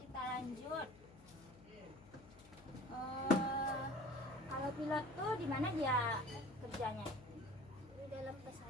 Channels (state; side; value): noise; left; hum, 21 dB below the sound